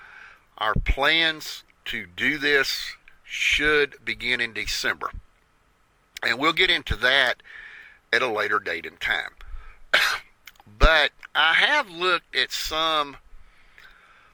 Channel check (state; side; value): identical; both; correlation 1.00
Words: Our plans to do this should begin in December. And we'll get into that at a later date and time. But I have looked at some